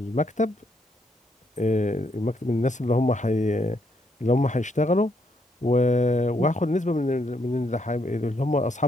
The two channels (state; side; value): normal; both; correlation 0.75